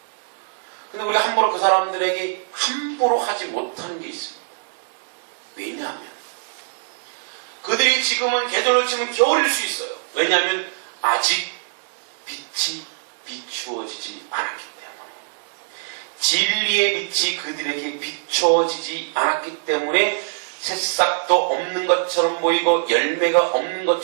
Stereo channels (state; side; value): silent; left; digital silence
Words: 근데 우리가 함부로 그 사람들에게 함부로 하지 못하는 게 있습니다. 왜냐하면 그들이 지금은 계절로 치면 겨울일 수 있어요. 왜냐하면 아직 빛이 비추어지지 않았기 때문에. 진리의 빛이 그들에게 비춰지지 않았기 때문에 새싹도 없는 것처럼 보이고 열매가 없는